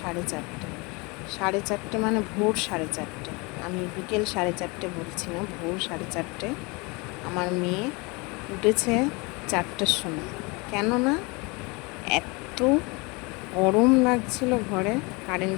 4:30 মানে ভোর 4:30। আমি বিকেল 4:30 বলছি না, ভোর 4:30। আমার মেয়ে উঠেছে 4টার সময়। কেননা এত গরম লাগছিল ঘরে, কারেন্ট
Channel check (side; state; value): right; quieter; 27.8 dB